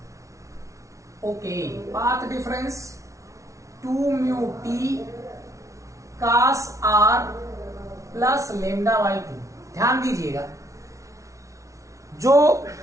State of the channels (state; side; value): late; left; 0.15 ms